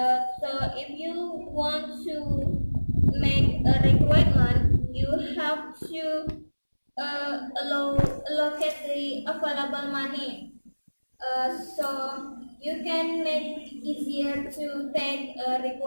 So if you want to make a requirement, you have to allocate the available money. So you can make it easier to take a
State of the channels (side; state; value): both; inverted; correlation -1.00